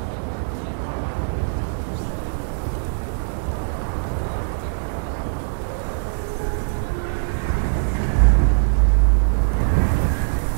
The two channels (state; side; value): silent; left; 64 dB below the other